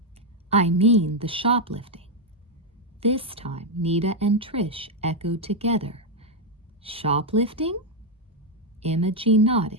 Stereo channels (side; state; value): both; normal; correlation 0.02